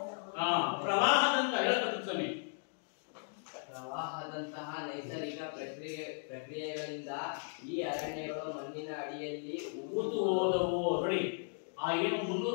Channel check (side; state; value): right; silent; 54 dB below the other